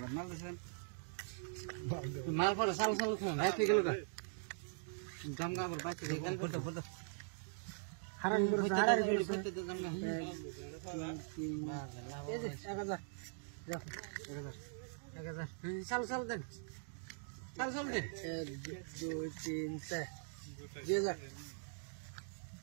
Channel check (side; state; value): left; silent; digital silence